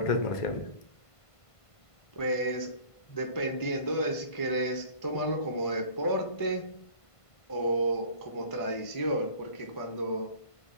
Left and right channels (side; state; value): right; late; 1.5 ms